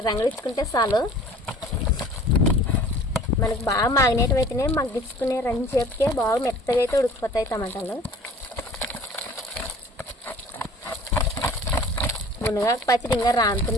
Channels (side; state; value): both; normal; correlation 0.48